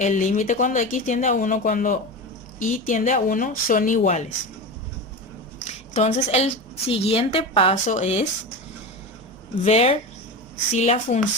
límite cuando x tiende a 1 cuando y tiende a 1 son iguales. Entonces el siguiente paso es ver si la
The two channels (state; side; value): normal; both; correlation 0.24